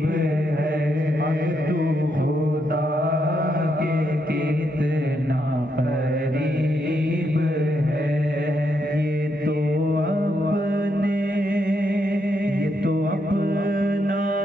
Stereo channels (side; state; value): both; normal; correlation 0.79